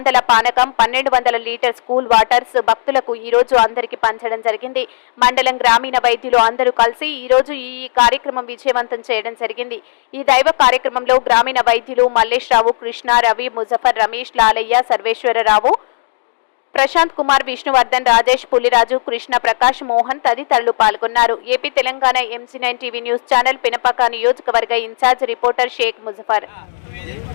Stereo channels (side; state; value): right; silent; digital silence